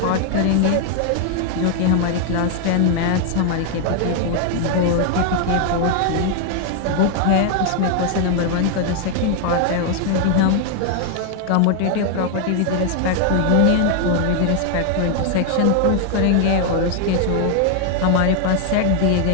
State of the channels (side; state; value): both; different; correlation 0.00